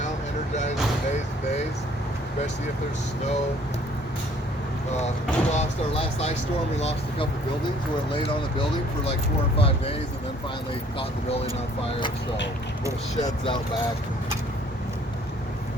energized for days and days, especially if there's snow. We lost our last ice storm. We lost a couple buildings where it laid on a building for like 4 or 5 days, and then finally caught the building on fire. So little sheds out back.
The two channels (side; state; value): both; normal; correlation 0.59